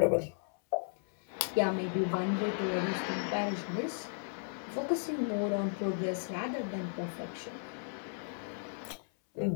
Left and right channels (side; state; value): right; silent; 55 dB below the other